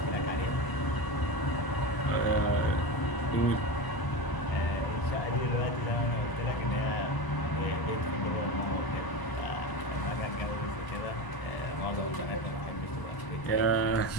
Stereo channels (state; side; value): late; right; 1.0 ms